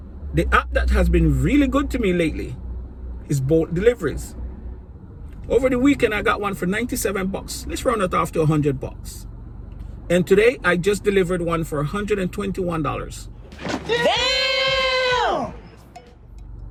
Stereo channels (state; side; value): identical; both; correlation 1.00